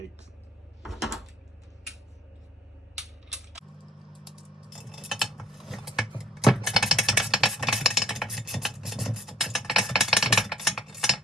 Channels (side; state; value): both; normal; correlation 0.57